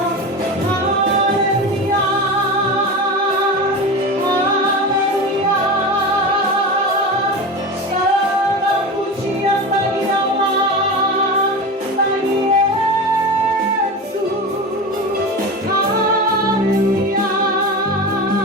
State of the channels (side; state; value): both; normal; correlation 0.26